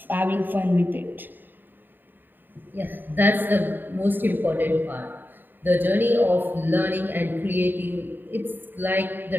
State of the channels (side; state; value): left; late; 0.092 ms